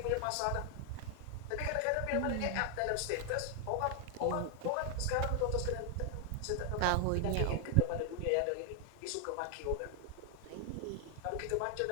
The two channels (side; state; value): both; different; correlation 0.00